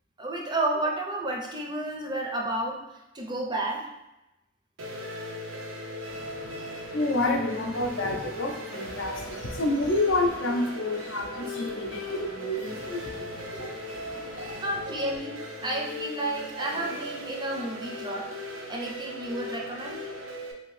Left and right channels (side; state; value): both; normal; correlation 0.07